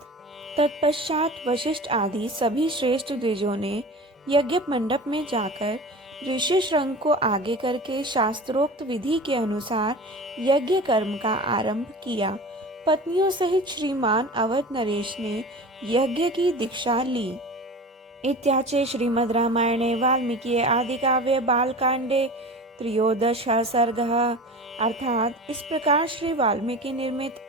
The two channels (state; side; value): normal; both; correlation 0.35